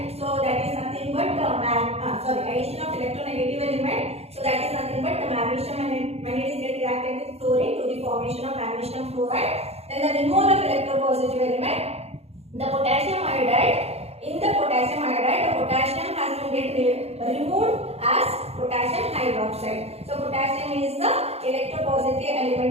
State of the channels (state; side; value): late; left; 0.30 ms